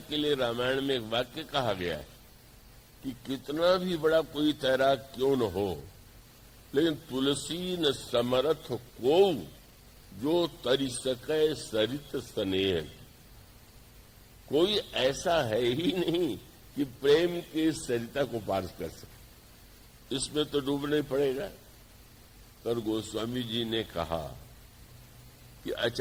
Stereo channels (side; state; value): both; identical; correlation 1.00